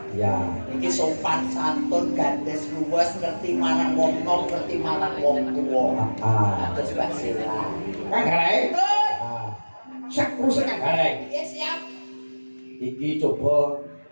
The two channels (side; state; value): both; inverted; correlation -1.00